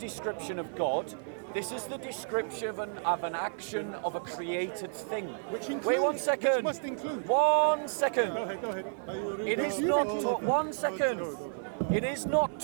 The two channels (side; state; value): left; silent; digital silence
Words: of God. This is the description of an action of a created thing. Which includes, Wait 1 second. Which must include. 1 second. Go ahead. It is You not. read all of them. 1 second. Go. It is not